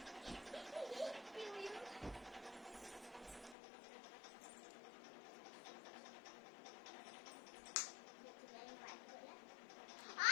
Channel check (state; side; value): drops out; right; at 3.6 s